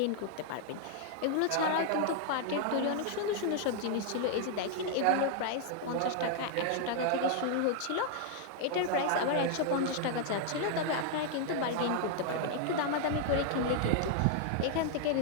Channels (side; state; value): both; different; correlation 0.00